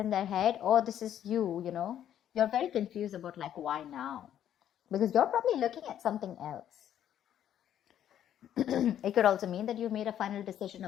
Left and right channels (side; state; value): right; quieter; 10.6 dB